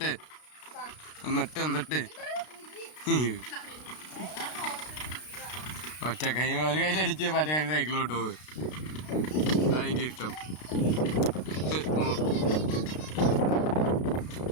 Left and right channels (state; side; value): late; right; 33 ms